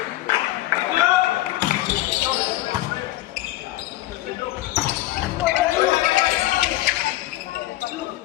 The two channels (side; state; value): right; quieter; 16.4 dB